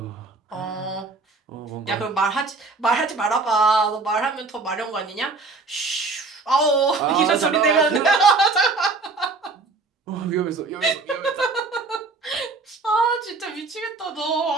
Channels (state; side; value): quieter; left; 3.9 dB